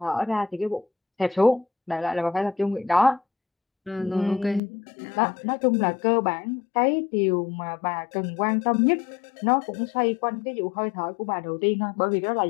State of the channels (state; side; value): drops out; right; at 4.6 s